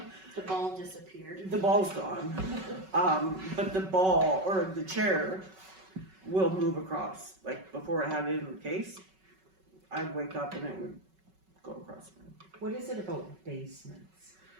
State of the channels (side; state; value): left; late; 5.3 ms